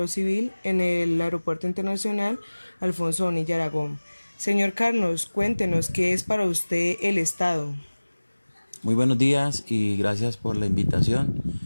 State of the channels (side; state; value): both; inverted; correlation -1.00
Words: en el Aeropuerto Internacional Alfonso Bonilla Aragón. Señor Carlos, cuéntenos qué es para usted el Estado. Muy buenos días y gracias por la invitación.